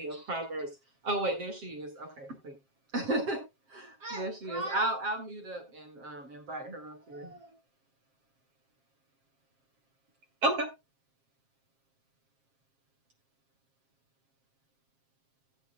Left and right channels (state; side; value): late; left; 7.4 ms